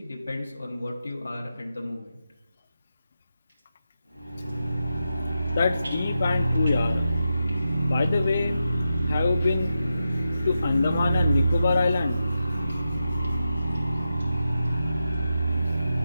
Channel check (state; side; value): inverted; both; correlation -0.89